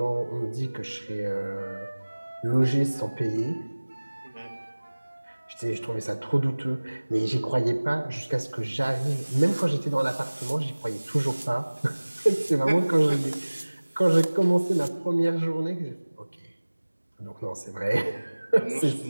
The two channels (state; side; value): inverted; both; correlation -1.00